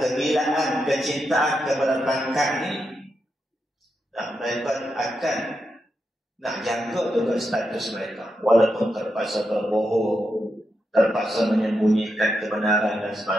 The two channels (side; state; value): both; normal; correlation 0.85